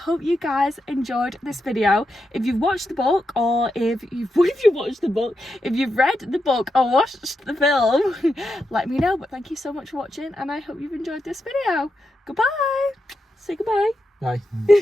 you guys enjoyed this video. If you've watched the book, or if you've read the book or watched the film, let me know. But thank you so much for watching, and I hope you've enjoyed this video. Goodbye. Say goodbye. Bye.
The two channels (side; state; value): both; normal; correlation 0.86